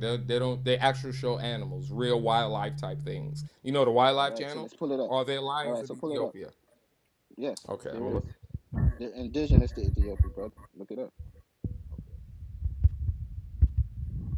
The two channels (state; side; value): identical; both; correlation 1.00